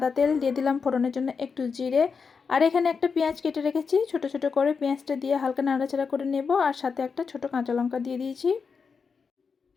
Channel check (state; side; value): quieter; right; 5.5 dB